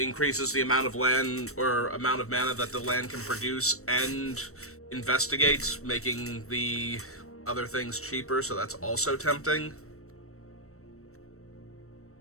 the amount of land or amount of mana that the land can produce and investigates, making the other things cheaper, so that's also tempting.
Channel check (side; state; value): right; late; 0.64 ms